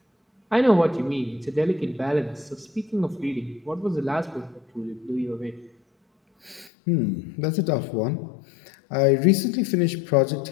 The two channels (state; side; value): drops out; right; at 6.7 s